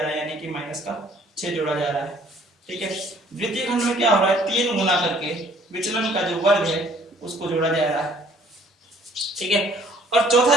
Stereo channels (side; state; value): both; normal; correlation 0.58